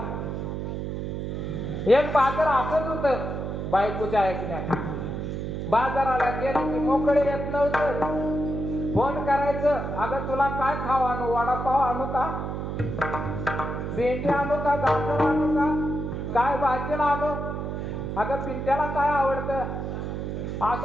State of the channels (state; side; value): noise; right; hum, 4 dB below the sound